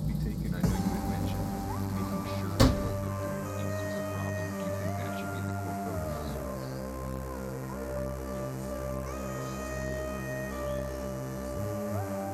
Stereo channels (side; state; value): both; identical; correlation 1.00